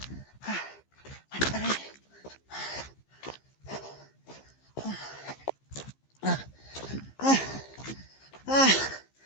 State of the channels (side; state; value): right; late; 15 ms